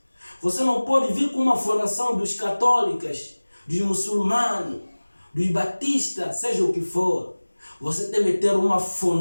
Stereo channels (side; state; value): both; inverted; correlation -1.00